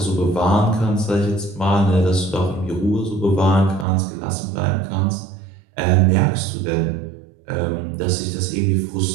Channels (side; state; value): left; drops out; at 3.9 s